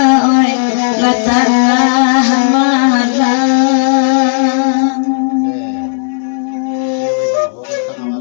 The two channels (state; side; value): silent; right; digital silence